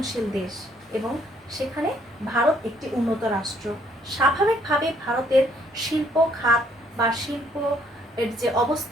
দেশ এবং সেখানে ভারত একটি উন্নত রাষ্ট্র। স্বাভাবিকভাবে ভারতের শিল্প খাত বা শিল্প এর যে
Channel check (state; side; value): normal; both; correlation 0.66